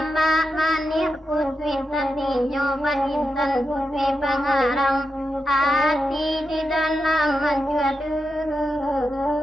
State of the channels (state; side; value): normal; both; correlation 0.87